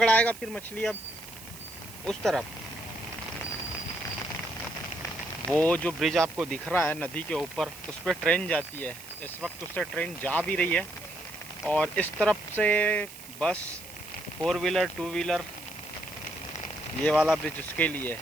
फिर मछली? अब उस तरफ वो जो ब्रिज आपको दिख रहा है नदी के ऊपर, उस पर ट्रेन जाती है। इस वक्त उससे ट्रेन जा भी रही है। और इस तरफ से बस, 4 व्हीलर 2 व्हीलर, ये वाला ब्रिज उसके लिए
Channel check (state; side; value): noise; right; hiss, 16 dB below the sound